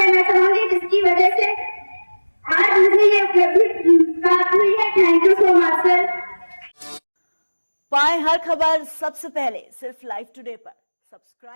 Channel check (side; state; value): both; inverted; correlation -1.00